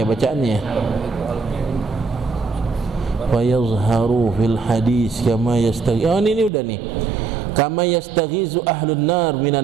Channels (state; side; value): drops out; left; at 6.5 s